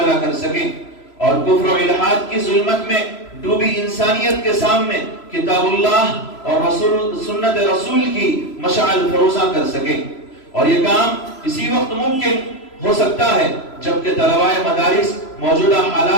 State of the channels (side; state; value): right; late; 3.0 ms